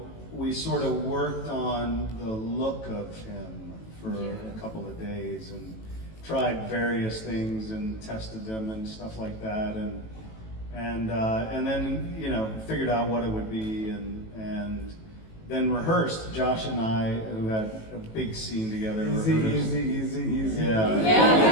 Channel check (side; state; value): right; late; 18 ms